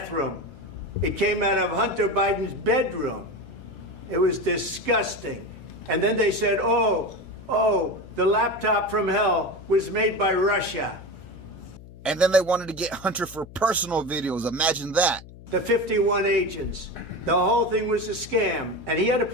It came out of Hunter Biden's bedroom. It was disgusting. And then they said, oh, the laptop from hell was made by Russia. And then they wanted to get Hunter for personal videos. Imagine that. The 51 agents. The whole thing was a scam. And he had to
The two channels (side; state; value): left; noise; hum, 18 dB below the sound